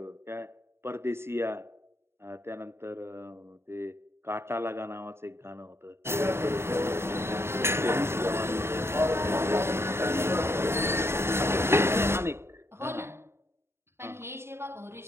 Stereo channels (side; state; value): left; late; 0.12 ms